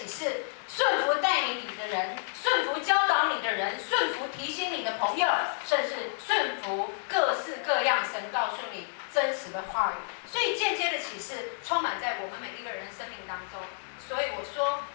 示，顺服带领你的人，顺服教导你的人，顺服提醒你的朋友，甚至顺服各式各样神告诉你真实的话语。所以间接的启示充满在我们每一个人生命当中。所以我说，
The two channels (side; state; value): right; silent; digital silence